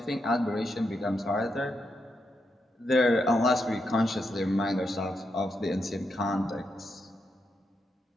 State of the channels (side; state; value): both; normal; correlation 0.83